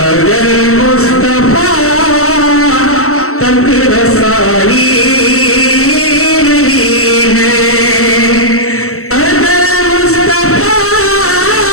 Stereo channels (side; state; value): right; late; 0.63 ms